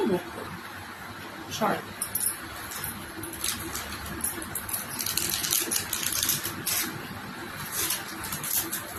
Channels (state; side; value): identical; both; correlation 1.00